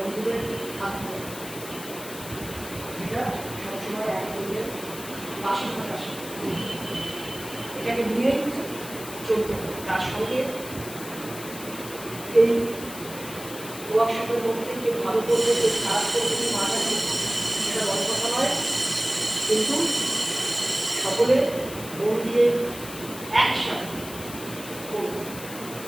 থাকবো, যেটা সবসময় এক বন্ধুদের পাশে থাকা শেখা। এটাকে নিয়েই চলতে হবে। তার সঙ্গে এই ওয়ার্কশপের মধ্যে কে ভালো করবে, কে খারাপ করবে, কে মাথা সেটা বড় কথা নয়, কিন্তু সকলে মন দিয়ে একসাথে করবো,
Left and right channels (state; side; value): noise; left; hiss, 12 dB below the sound